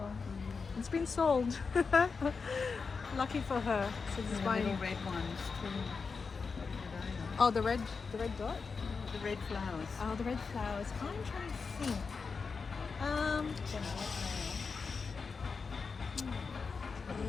It's been sold. Lucky for her. So this is The buying. little red ones too. What are they? Oh, the red dot. The red flowers. Oh, the red flowers. I'm trying to think. Don't know what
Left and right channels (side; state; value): right; quieter; 5.0 dB